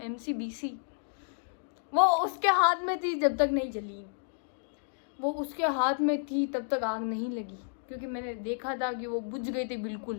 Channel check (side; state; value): right; silent; digital silence